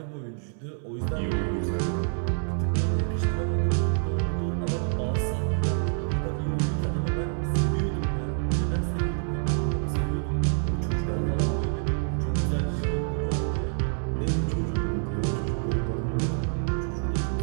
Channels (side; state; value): left; silent; 60 dB below the other